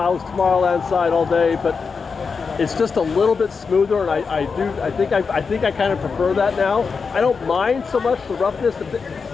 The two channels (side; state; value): right; quieter; 5.2 dB